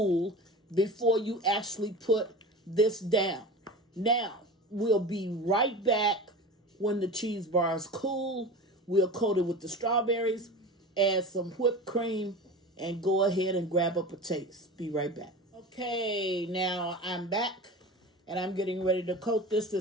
before you actually put this down. Now, we'll be right back when the cheese bars cool. We'll coat it with the strawberries, add some whipped cream, and go ahead and grab up a taste. Be right back. Okay, now I'm back, and I'm getting ready to coat this.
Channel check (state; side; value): normal; both; correlation 0.32